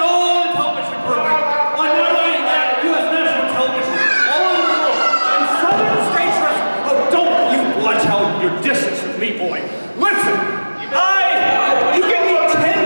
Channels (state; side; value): inverted; both; correlation -1.00